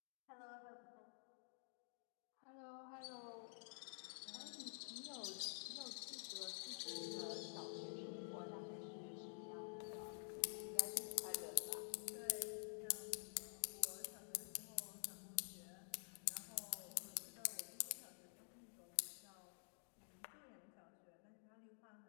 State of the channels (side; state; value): right; silent; digital silence